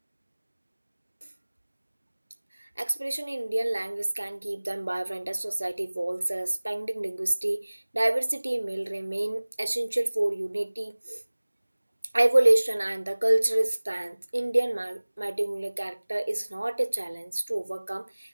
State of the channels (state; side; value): inverted; both; correlation -1.00